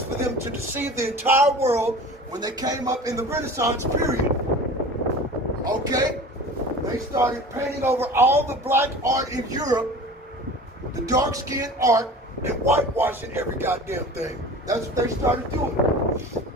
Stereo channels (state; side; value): normal; both; correlation 0.39